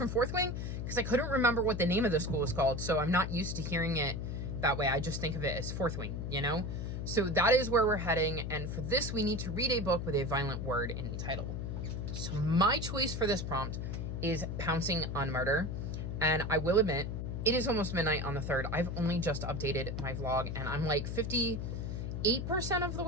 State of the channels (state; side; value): noise; left; hum, 4 dB below the sound